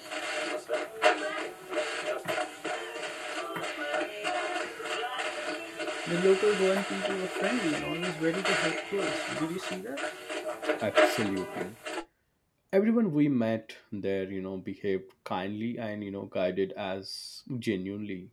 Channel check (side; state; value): both; identical; correlation 1.00